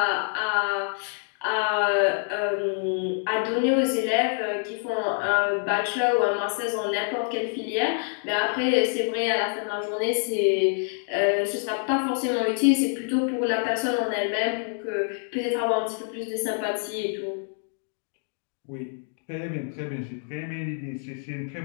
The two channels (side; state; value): right; silent; 57 dB below the other